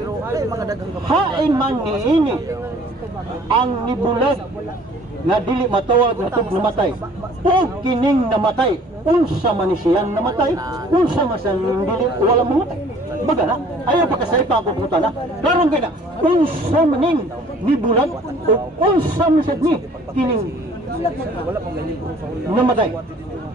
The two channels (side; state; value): both; normal; correlation 0.54